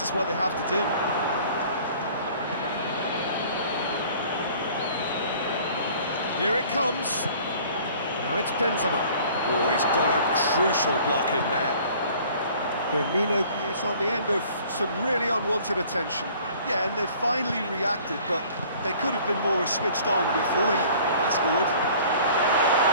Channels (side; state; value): both; inverted; correlation -0.51